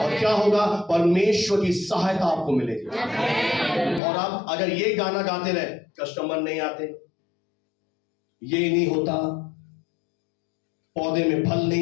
क्या होगा? परमेश्वर की सहायता आपको मिलेगी। और आप अगर ये गाना गाते रहे, कस्टमर नहीं आते, ये नहीं होता, पौधे में फल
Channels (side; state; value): right; drops out; at 4.0 s